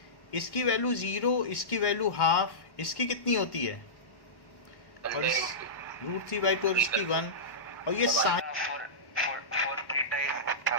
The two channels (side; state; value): right; late; 1.1 ms